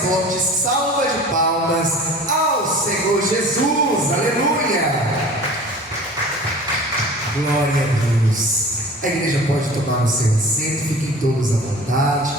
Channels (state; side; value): normal; both; correlation 0.42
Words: forte salva de palmas ao Senhor Jesus. Aleluia! Glória a Deus. A igreja pode tomar o seu assento, fiquem todos à vontade.